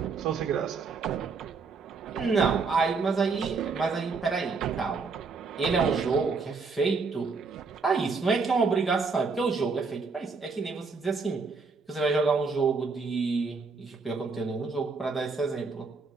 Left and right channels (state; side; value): quieter; left; 4.6 dB